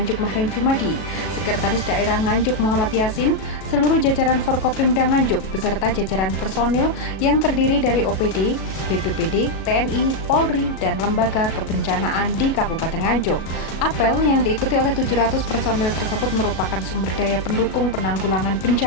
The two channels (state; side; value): late; right; 37 ms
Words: Mahrem Jumadi, Sekretaris Daerah Nganjuk Muhammad Yasin, seluruh jajaran Forkopimda Nganjuk beserta jajaran personil yang terdiri dari OPD, BPBD, TNI, Polri, dan lembaga kebencanaan di Kabupaten Nganjuk. Apel yang diikuti oleh 700 personil tersebut merupakan sumber daya pendukung penanggulangan